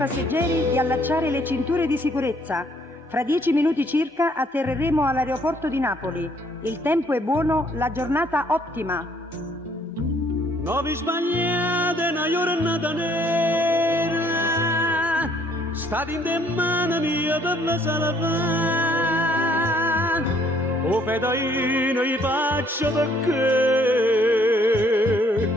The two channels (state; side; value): normal; both; correlation 0.64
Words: di allacciare le cinture di sicurezza. Fra 10 minuti circa atterreremo all'aeroporto di Napoli. Il tempo è buono, la giornata ottima. Non vi sbagliate, una giornata nera. State in mano mia per la sala. O fedaino gli faccio perché.